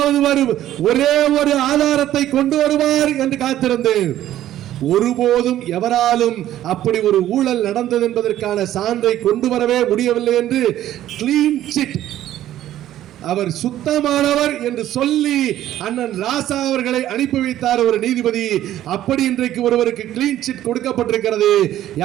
ஒரே ஒரு ஆதாரத்தை கொண்டு வருவார் என்று காத்திருந்தேன். ஒருபோதும் எவராலும் அப்படி ஒரு ஊழல் நடந்தது என்பதற்கான சான்றை கொண்டு வரவே முடியவில்லை என்று கிளீன் சிட், அவர் சுத்தமானவர் என்று சொல்லி அண்ணன் ராசா அவர்களை அனுப்பி வைத்தார் ஒரு நீதிபதி. அப்படி இன்றைக்கு ஒருவருக்கு கிளீன் சிட் கொடுக்கப்பட்டிருக்கிறது.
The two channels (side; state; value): left; quieter; 12.8 dB